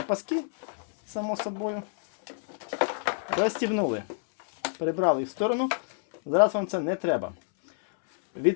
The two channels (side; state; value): right; silent; 60 dB below the other